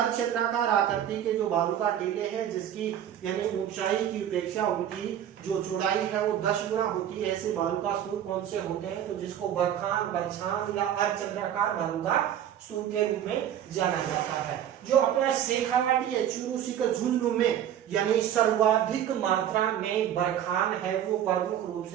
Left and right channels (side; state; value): left; quieter; 10.3 dB